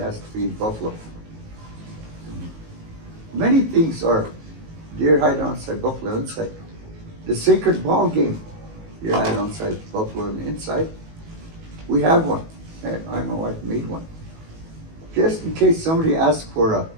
has to be buffalo. Many things are deer hide outside, buffalo inside. The sacred ball game, deer hide outside, buffalo on the inside. We have one. I and my wife made one. Just in case somebody asks for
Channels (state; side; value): late; left; 19 ms